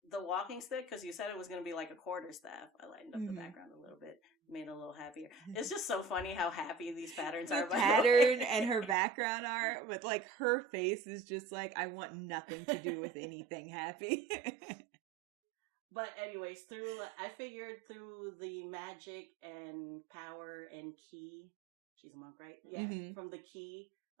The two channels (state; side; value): drops out; left; at 9.0 s